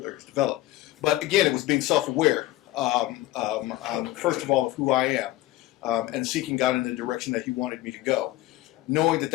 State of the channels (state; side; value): quieter; right; 16.4 dB